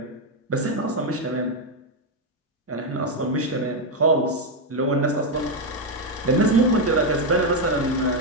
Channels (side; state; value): both; normal; correlation 0.04